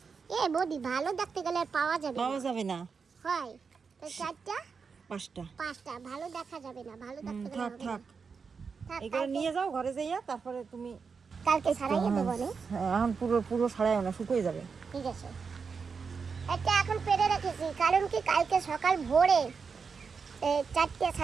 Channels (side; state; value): left; quieter; 5.5 dB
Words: এ বদি ভালো দেখতে গেলে আর পাওয়া যাবে না। পাওয়া যাবে না। হয় তো 4টা 5টা ভালো দেখা যাবে না, ভালো দেখতে গেলে থাক হবে থাক, না। থাক, এগুলো নিয়ে যাও ঘরে যাইয়া, তারপরে তুমি কালকে ছাড়াইয়ে দেবো না। এখন পুরো পুরো ছাড়াই না, শুকিয়ে যাবে। ঠিক আছে, এটা এখন পেরে রেখেছি, কারণ কি কালকে সকাল ভোরে 4টে